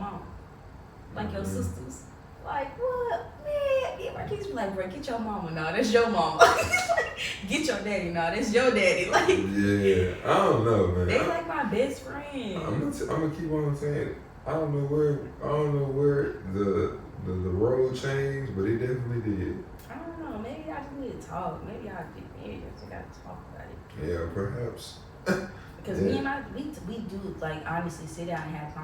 Like your sisters? Like, what? Man, yeah, my kids be like, bro, get your mama. No, that's your mama. Get your daddy. No, that's your daddy. Like, yeah, I don't know, man. They like my best friend. I'm gonna keep on saying it. I don't know where the road changed, but it definitely did. I don't know. Maybe I just need to talk. Maybe I just gotta talk about it. Yeah, perhaps. Because me and we do like honestly sit down and have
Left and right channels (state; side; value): identical; both; correlation 1.00